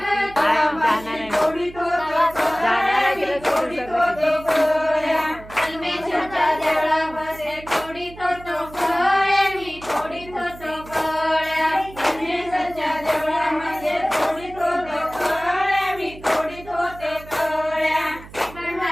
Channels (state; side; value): noise; right; hum, 18 dB below the sound